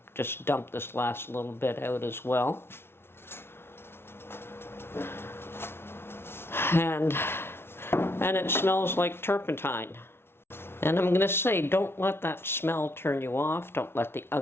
just dump this last little bit out as well. And it smells like turpentine. And I'm going to say, don't let that smell turn you off. Don't let the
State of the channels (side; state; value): right; late; 0.12 ms